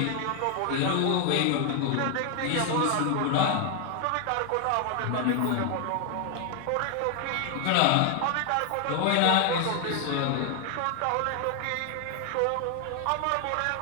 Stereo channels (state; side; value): different; both; correlation 0.00